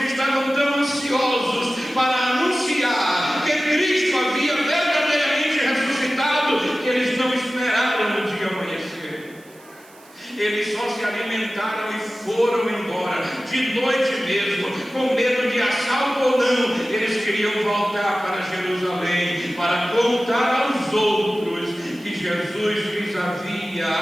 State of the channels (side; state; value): right; noise; hiss, 26 dB below the sound